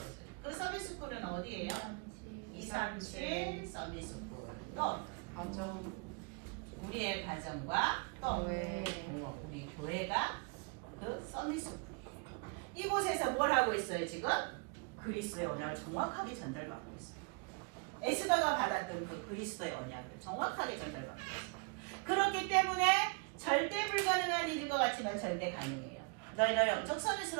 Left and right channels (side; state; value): left; quieter; 33.4 dB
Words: 그 서밋 스쿨은 어디예요? 237 서밋 스쿨. 또 우리의 가정과 또 우리 교회가 그 서밋 스쿨. 이곳에서 뭘 하고 있어요 지금? 그리스도의 언약을 정확하게 전달받고 있어요. 에스더가 받았던 그 그리스도의 언약을 정확하게 전달받고 있어요. 그렇기 때문에 절대 불가능한 일인 것 같지만 절대 가능해요. 너희를 영적